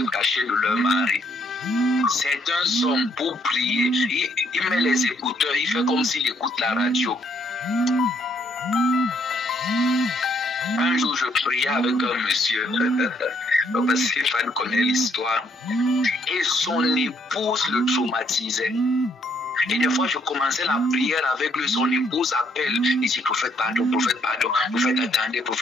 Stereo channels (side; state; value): both; normal; correlation 0.70